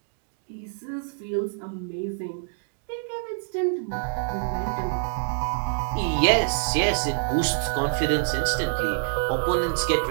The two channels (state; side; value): silent; left; digital silence